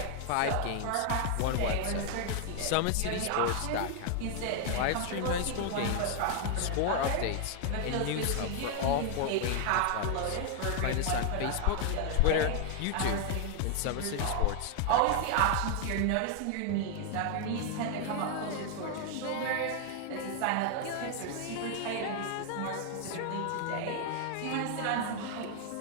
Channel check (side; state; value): both; different; correlation 0.00